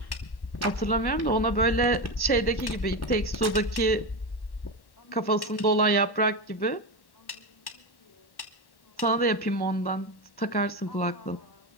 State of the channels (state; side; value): late; right; 1.1 ms